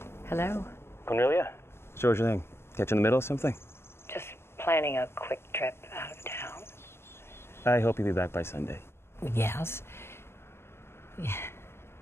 Hello? Cornelia? So what's your thing? Catch in the middle of something? Just planning a quick trip out of town. I hope you'll be back by Sunday. Yes. Yeah.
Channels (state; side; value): late; right; 0.12 ms